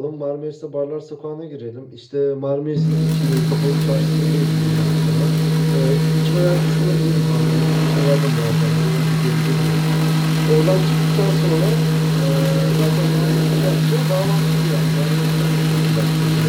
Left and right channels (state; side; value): identical; both; correlation 1.00